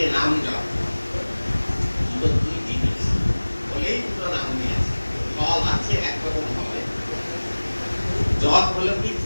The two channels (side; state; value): both; inverted; correlation -1.00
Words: নাম জপ, দুটো দুই জিনিস বলেই দুটো নাম নিয়েছে। ফল আছে একরকম হবে, জপ হলো কি